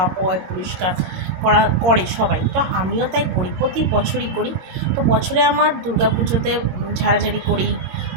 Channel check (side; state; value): left; late; 22 ms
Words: পোয় পরিষ্কার করে সবাই, তো আমিও তাই করি, প্রতি বছরই করি। তো বছরে আমার দুর্গা পুজোতে ঝাড়াঝাড়ি করি,